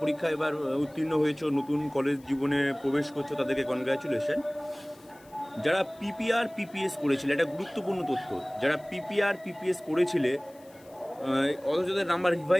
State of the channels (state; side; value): noise; left; hiss, 27 dB below the sound